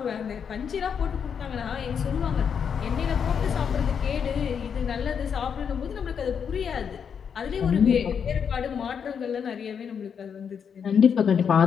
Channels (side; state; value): right; quieter; 7.1 dB